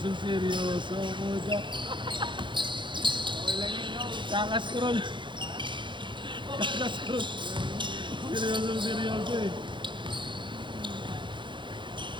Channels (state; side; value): late; left; 0.23 ms